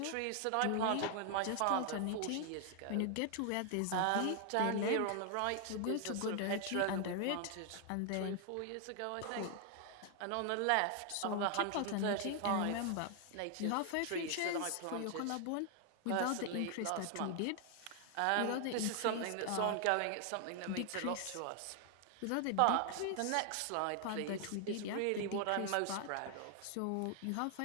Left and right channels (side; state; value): both; different; correlation 0.00